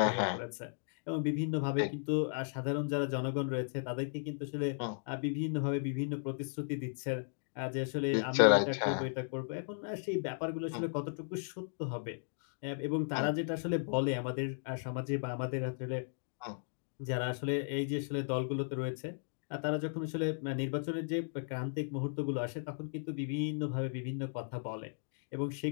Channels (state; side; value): silent; right; digital silence